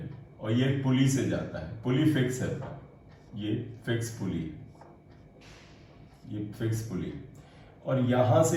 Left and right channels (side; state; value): both; identical; correlation 1.00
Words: और ये पुली से जाता है, पुली फिक्स है, ये फिक्स पुली, ये फिक्स पुली, और यहां